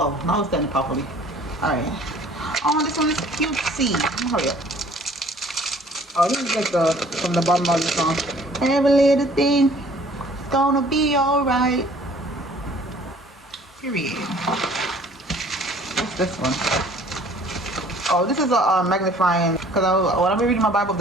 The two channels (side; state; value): both; normal; correlation 0.54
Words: now it's standing properly. Alright. Oh, this one is cutesy. Hurry up. Oh, this is like from the bottom of the song. Every little thing is gonna be alright. Period. What's this one? Oh, this is a magnifying, because when I'm reading my Bible,